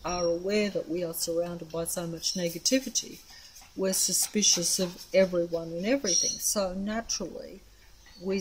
are aware that we are surrounded by so much negativity, we're suspicious of everyone and everything. So naturally, we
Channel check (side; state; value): both; identical; correlation 1.00